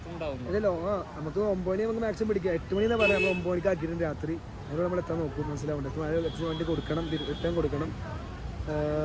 അല്ലല്ലോ, നമുക്ക് 9 മണി നമുക്ക് മാക്സിമം പിടിക്കാം. 8 മണി എന്നാ പറയാം. നമ്മൾ 9 മണിക്ക് ആക്കിയിട്ടുണ്ട് രാത്രി. അതിനോട് നമ്മൾ എത്താൻ നോക്കും, മനസ്സിലാവുന്നുണ്ട്. വണ്ടി കൊടുക്കണം, റിട്ടേൺ കൊടുക്കണം.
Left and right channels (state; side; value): identical; both; correlation 1.00